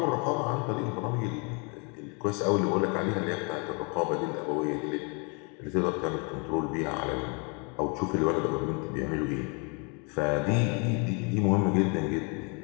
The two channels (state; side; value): quieter; right; 34.1 dB